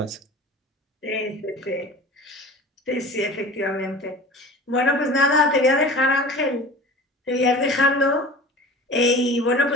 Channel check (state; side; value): normal; both; correlation 0.39